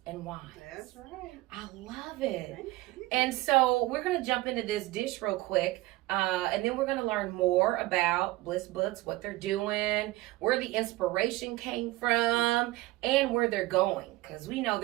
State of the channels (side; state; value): left; quieter; 19.2 dB